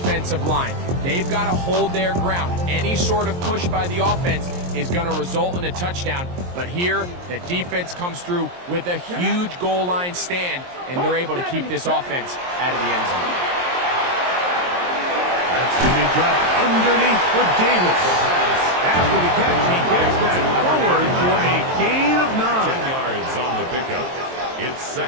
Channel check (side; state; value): left; late; 23 ms